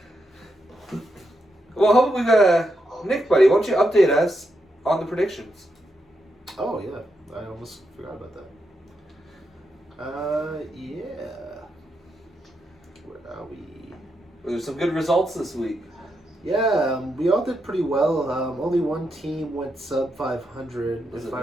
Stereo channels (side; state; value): both; normal; correlation 0.83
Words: Well, hopefully we got Nick, buddy. Why don't you update us on the predictions? Oh, yeah. I almost forgot about that. Where are we? There's some good results this week. Yeah, we all did pretty well. Only one team went sub 500, if I